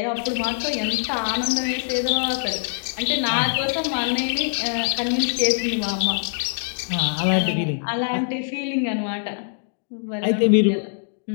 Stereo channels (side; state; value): right; silent; digital silence